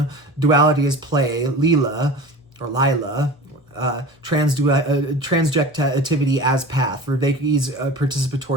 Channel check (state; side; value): normal; both; correlation 0.36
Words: duality as play, Leela, or Lila, transjectivity as path, Vervaeke's